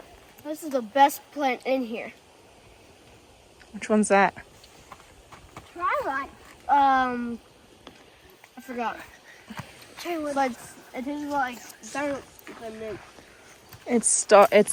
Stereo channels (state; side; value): identical; both; correlation 1.00